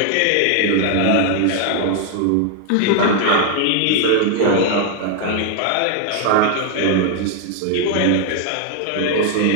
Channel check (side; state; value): both; different; correlation 0.00